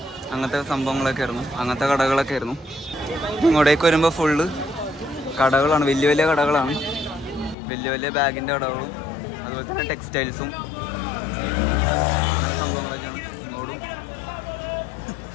അങ്ങനത്തെ സംഭവങ്ങളൊക്കെ ആയിരുന്നു, അങ്ങനത്തെ കടകളൊക്കെ ആയിരുന്നു. ഇങ്ങോട്ടേക്ക് വരുമ്പോൾ ഫുള്ള് കടകളാണ്, വലിയ വലിയ കടകളാണ്. വലിയ വലിയ ബാഗിൻ്റെ കടകളും അതുപോലെ തന്നെ ടെക്സ്റ്റൈൽസും അങ്ങനെ സംഭവങ്ങളൊക്കെയാണ്.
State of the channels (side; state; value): right; drops out; at 7.6 s